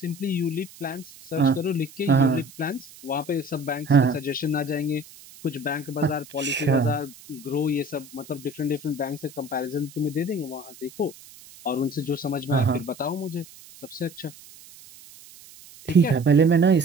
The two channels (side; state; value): right; noise; hiss, 20 dB below the sound